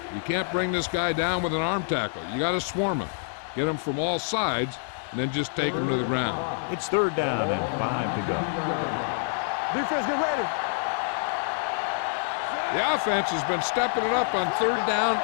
You can't bring this guy down with an arm tackle. You got to swarm him, get him from all sides, and then just take him to the ground. It's 3rd down and 5 to go. Defense, get ready. The offense has been stepping it up on 3rd down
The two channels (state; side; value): silent; right; digital silence